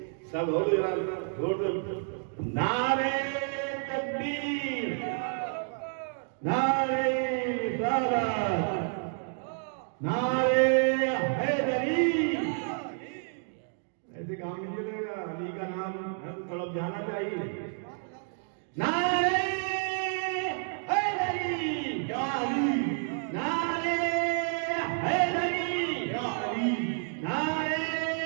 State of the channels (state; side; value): silent; left; 58 dB below the other